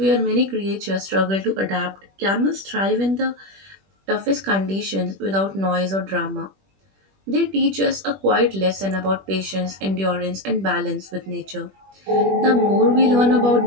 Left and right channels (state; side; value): late; left; 21 ms